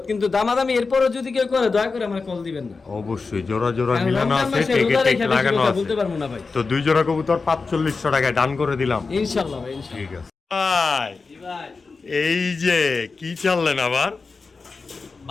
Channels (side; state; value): right; quieter; 4.3 dB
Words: কিন্তু দামাদামি এরপরও যদি কেউ করে, দয়া করে আমার কল দিবেন না। অবশ্যই জোড়া জোড়া কারণ মিলানো রমজান আছে, মাসে টেকে রোজা টেক রেখে বেশি লাগানো কথা আছে। বলতে পারবো না ভাই। তো 2 জোড়া কবুতর 4500 টাকায় ডান করে দিলাম। ইনশাআল্লাহ ভাই, ইনশাআল্লাহ। ঠিক আছে ভাই। জি ভাই। এই যে কি চাললেন আবার?